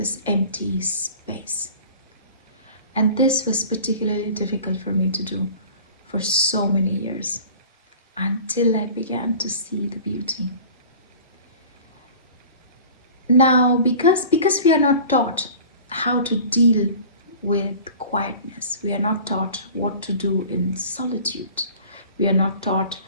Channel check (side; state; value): both; inverted; correlation -0.42